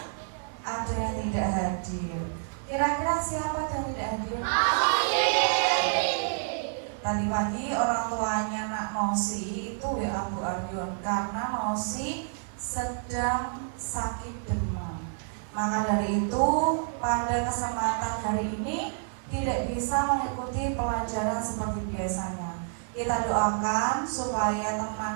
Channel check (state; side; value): silent; left; 59 dB below the other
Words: ada yang tidak hadir. Kira-kira siapa yang tidak hadir? Tadi pagi orang tuanya Nak Nosi itu WA Bu Aryon karena Nosi sedang sakit demam. Maka dari itu pada kesempatan hari ini tidak bisa mengikuti pelajaran seperti biasanya. Kita doakan supaya